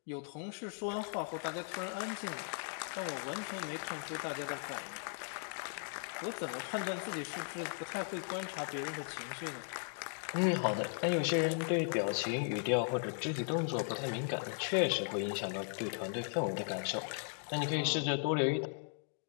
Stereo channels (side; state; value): right; silent; 53 dB below the other